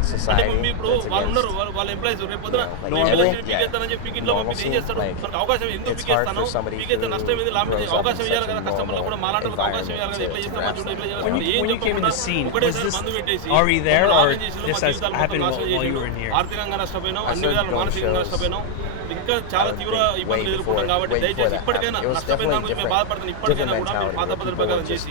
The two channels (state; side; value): different; both; correlation 0.00